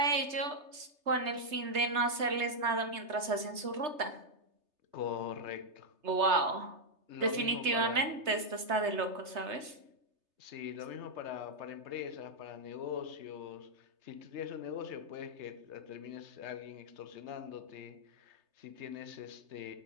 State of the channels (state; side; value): late; left; 3.3 ms